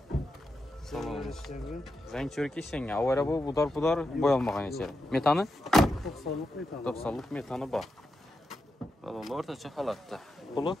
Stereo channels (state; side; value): normal; both; correlation 0.87